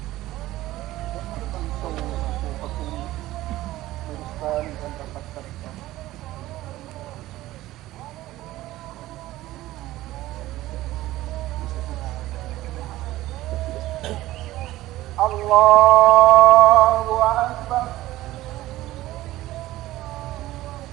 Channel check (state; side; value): quieter; left; 16.2 dB